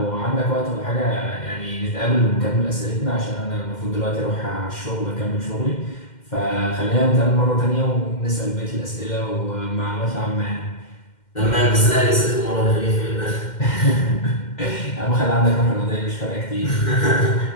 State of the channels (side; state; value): right; late; 2.1 ms